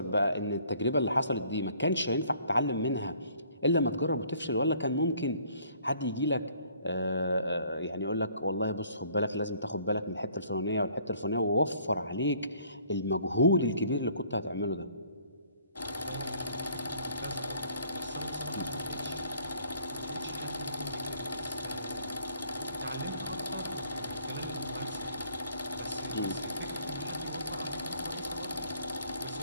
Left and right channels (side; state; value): both; inverted; correlation -0.59